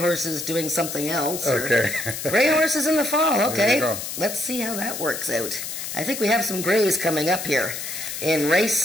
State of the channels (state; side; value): noise; left; hiss, 6 dB below the sound